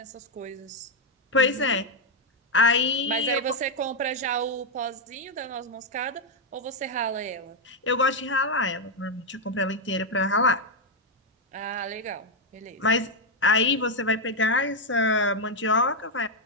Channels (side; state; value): both; normal; correlation 0.02